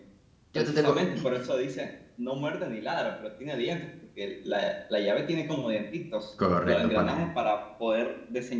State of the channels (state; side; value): identical; both; correlation 1.00